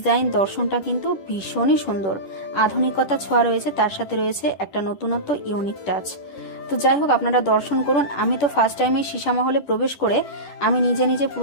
দর্শনটা কিন্তু ভীষণই সুন্দর। আধুনিকতা ছোঁয়া রয়েছে, তার সাথে রয়েছে একটা নতুনত্ব ইউনিক টাচ। তো যাই হোক, আপনারা দর্শন করুন। আমি তো ফার্স্ট টাইম এই সীসামহলে প্রবেশ করে আমি নিজে নিজে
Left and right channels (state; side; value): late; right; 10 ms